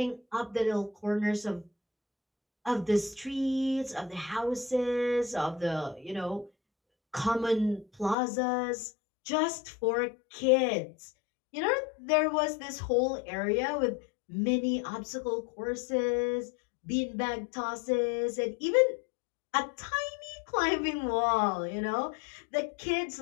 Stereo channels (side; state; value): right; drops out; at 8.2 s